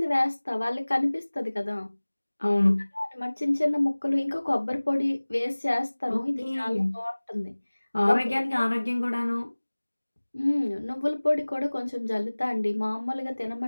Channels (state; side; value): inverted; both; correlation -1.00